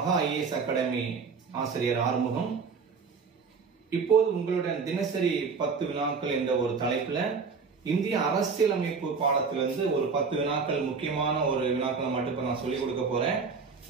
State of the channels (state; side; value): quieter; left; 5.2 dB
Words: ஐஏஎஸ் அகாடமி ஆசிரியர் ஆறுமுகம். இப்போது உங்களுடன் தினசரி 10 வினாக்கள் என்ற ஒரு தலைப்புல இந்திய அரசியலமைப்பு பாடத்திலிருந்து ஒரு 10 வினாக்கள் முக்கியமான ஒரு வினாக்களை மட்டும் நான் சொல்லிக் கொடுக்க போறேன்.